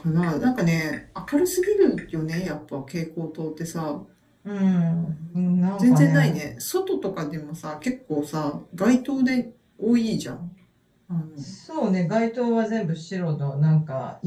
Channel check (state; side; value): identical; both; correlation 1.00